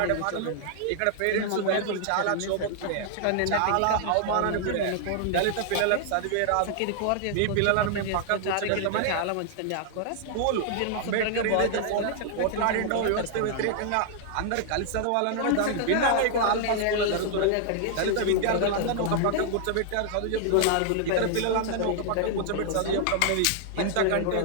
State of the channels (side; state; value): both; different; correlation 0.00